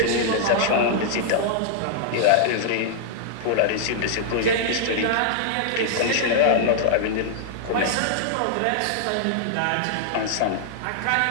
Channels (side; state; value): both; different; correlation -0.01